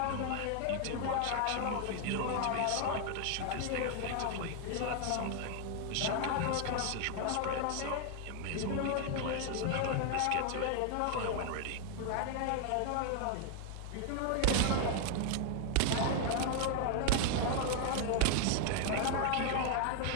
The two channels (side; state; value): both; different; correlation 0.00